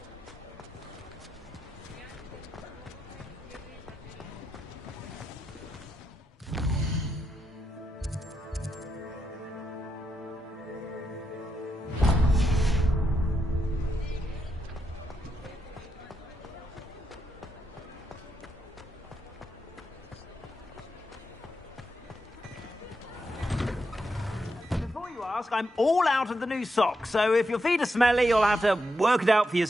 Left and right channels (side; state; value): both; normal; correlation 0.83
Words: I'm all out of the new socks, so if your feet are smelly, you'll have to work it out for